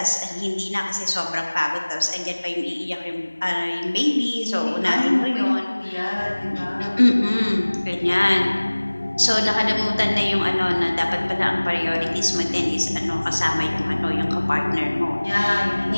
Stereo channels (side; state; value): both; inverted; correlation -1.00